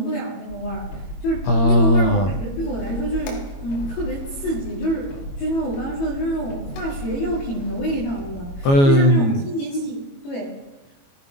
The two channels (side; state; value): right; late; 22 ms